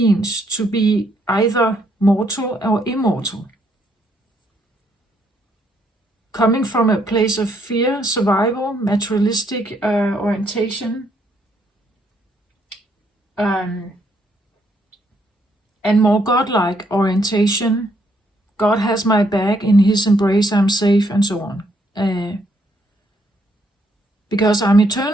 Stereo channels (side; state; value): both; normal; correlation 0.72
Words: to be either mortal or immortal? Coming from a place of fear, survival, materialistic orientation, and more godlike orientation. God has my back, in his embrace I'm safe, and so on. Because I'm